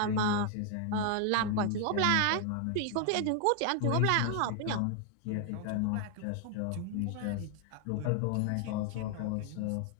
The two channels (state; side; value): different; both; correlation 0.00